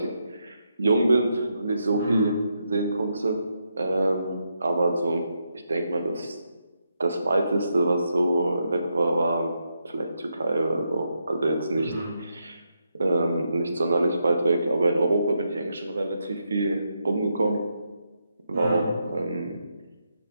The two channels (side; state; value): both; inverted; correlation -0.82